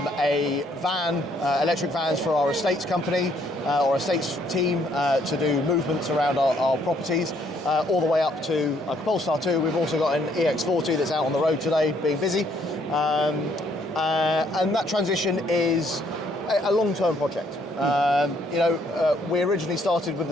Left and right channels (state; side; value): normal; both; correlation 0.67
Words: van, electric vans for our estates company or estates team to do movements around our properties, all the way up to like a Polestar 2. We've also got an EX40 that's out on the road today being busy, and that transition is a long-term project. We originally started with